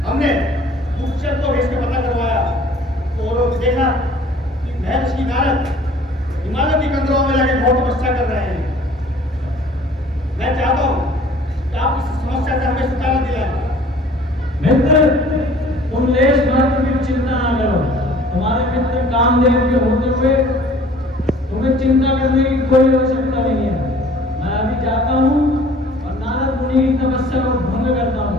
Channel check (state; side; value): normal; both; correlation 0.51